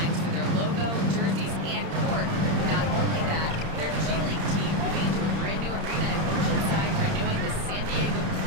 for their logo, jerseys, and court. Not only that, their G League team moving into a brand new arena in Oceanside, renewing the San Diego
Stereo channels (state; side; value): late; left; 31 ms